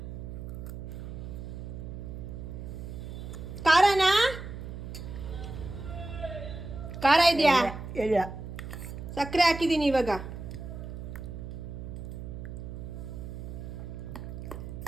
ಖಾರನಾ? ಖಾರ ಇದೆಯಾ? ಇಲ್ಲ. ಸಕ್ಕರೆ ಹಾಕಿದ್ದೀನಿ ಇವಾಗ.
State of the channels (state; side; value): noise; right; hum, 8 dB below the sound